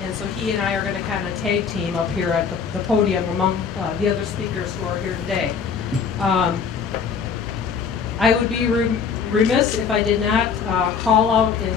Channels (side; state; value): right; quieter; 6.3 dB